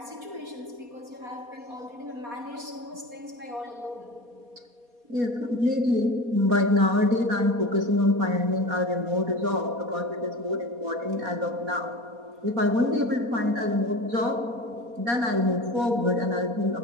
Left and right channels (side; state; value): left; late; 4.2 ms